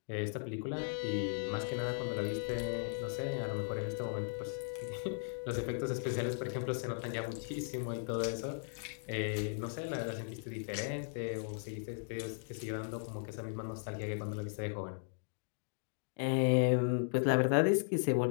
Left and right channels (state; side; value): silent; right; digital silence